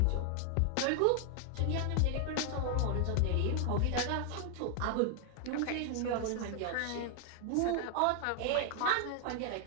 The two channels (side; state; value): both; different; correlation 0.00